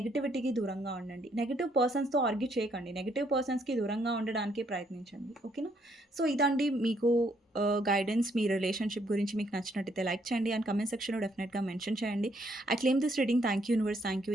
దూరంగా ఉండండి. నెగెటివ్ పర్సన్స్‌తో ఆర్గ్యూ చేయకండి. నెగెటివ్ పర్సన్స్‌కి దూరంగా ఉండడానికే ప్రయత్నించండి. ఓకేనా? సో, ఇదండి మీకు గైడెన్స్ మీ రిలేషన్‌షిప్ గురించి మీకు నచ్చినట్టయితే లైక్ చేయండి అండ్ కామెంట్ సెక్షన్‌లో డెఫినెట్‌గా మెన్షన్ చేయండి. I claim this reading thank you universe, thank you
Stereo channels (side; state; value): both; normal; correlation 0.71